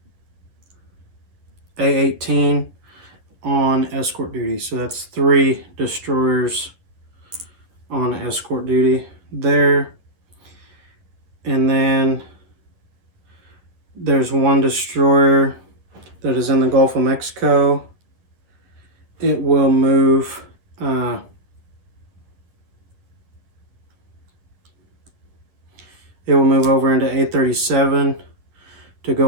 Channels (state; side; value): late; left; 11 ms